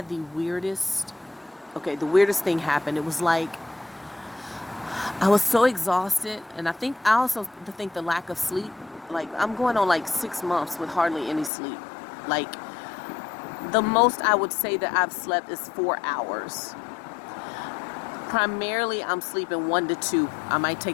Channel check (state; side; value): drops out; right; at 11.5 s